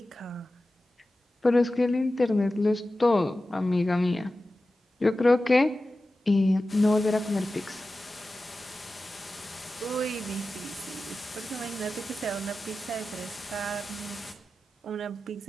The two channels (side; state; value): both; normal; correlation 0.94